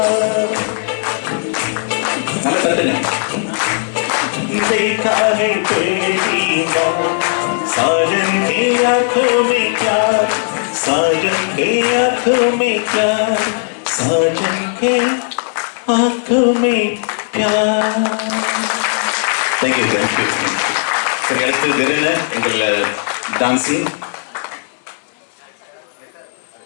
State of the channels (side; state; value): right; silent; digital silence